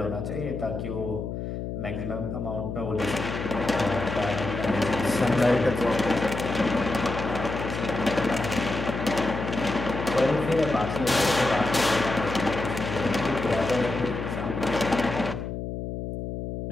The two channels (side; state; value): left; noise; hum, 5 dB below the sound